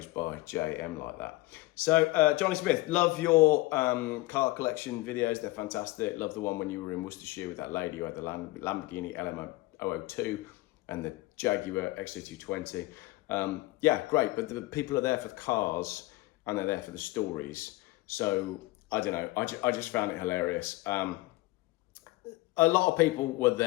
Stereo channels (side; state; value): right; quieter; 20.3 dB